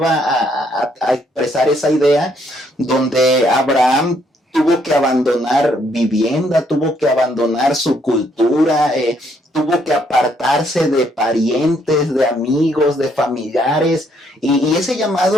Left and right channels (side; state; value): both; normal; correlation 0.70